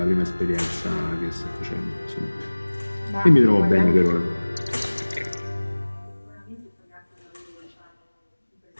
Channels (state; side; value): inverted; both; correlation -1.00